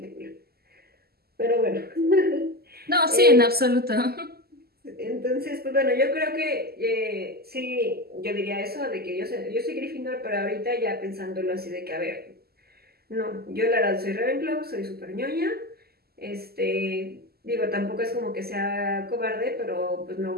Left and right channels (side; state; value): left; late; 0.46 ms